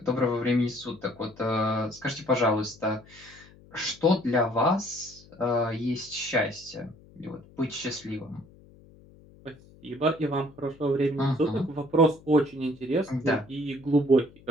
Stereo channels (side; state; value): left; noise; hum, 24 dB below the sound